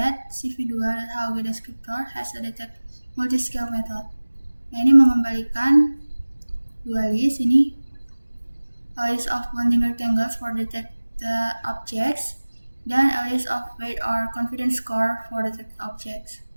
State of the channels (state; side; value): inverted; both; correlation -1.00